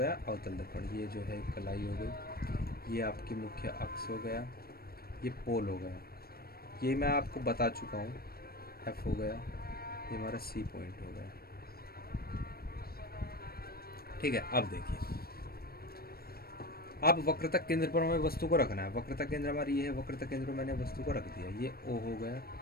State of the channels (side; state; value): right; late; 0.44 ms